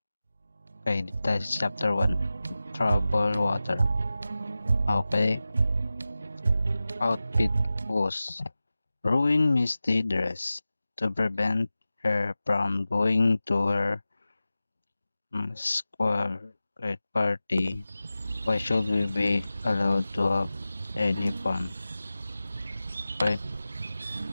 Okay, dito tayo sa chapter 1. Trouble Water. Okay. Outfit was ruin Misty dress to prevent her from going to her square party. Why should we be allowed to have any fun? Okay.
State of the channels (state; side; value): inverted; both; correlation -0.95